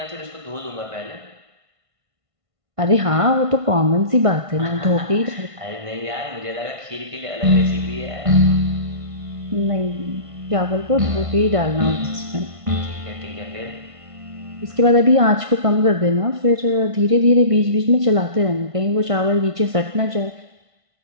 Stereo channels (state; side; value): late; left; 1.5 ms